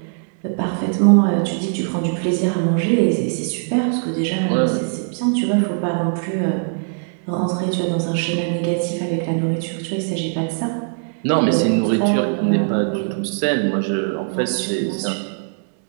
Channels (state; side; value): silent; left; 65 dB below the other